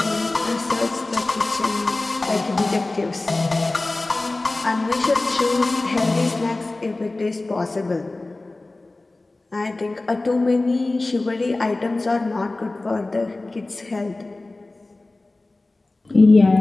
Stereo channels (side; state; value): right; quieter; 3.0 dB